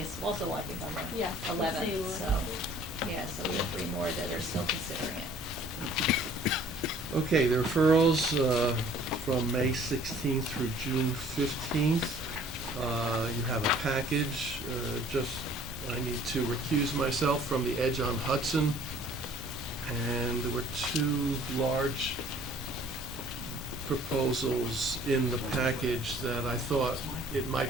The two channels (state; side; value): normal; both; correlation 0.54